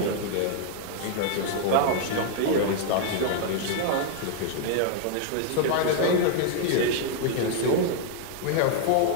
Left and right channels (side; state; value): both; different; correlation 0.00